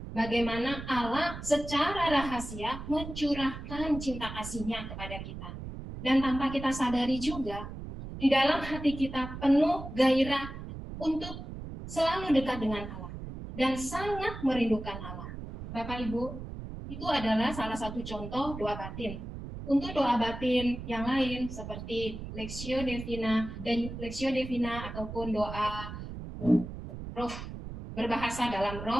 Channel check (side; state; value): right; noise; rumble, 9 dB below the sound